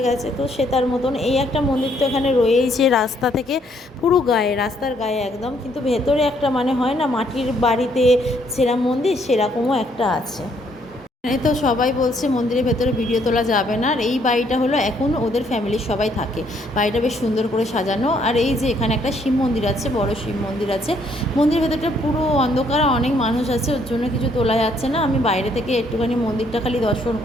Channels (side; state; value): both; normal; correlation 0.68